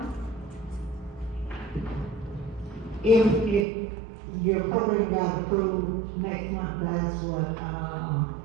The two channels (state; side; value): drops out; left; at 3.7 s